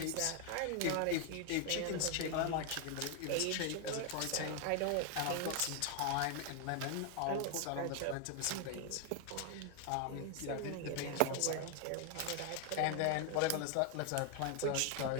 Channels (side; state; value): both; different; correlation 0.01